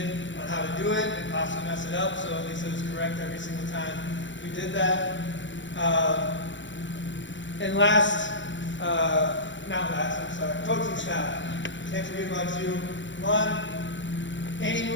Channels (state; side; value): late; right; 0.54 ms